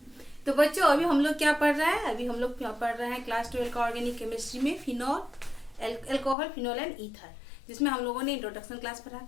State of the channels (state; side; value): drops out; right; at 6.4 s